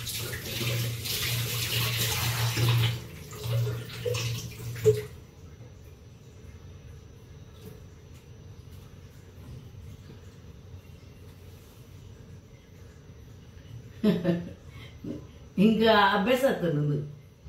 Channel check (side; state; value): both; identical; correlation 1.00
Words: ಹಿಂಗ ಅಭ್ಯಾಸ ಆಗ್ತದೆ ನಂದು